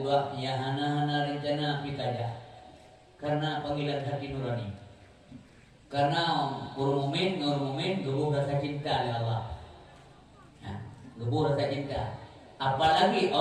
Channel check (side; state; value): both; identical; correlation 1.00